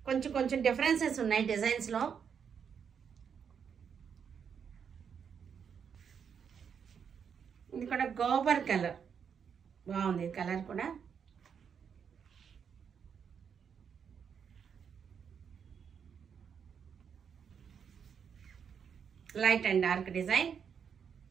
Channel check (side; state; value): left; quieter; 7.2 dB